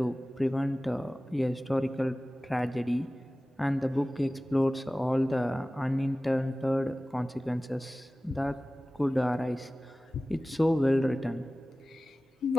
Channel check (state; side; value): normal; both; correlation 0.96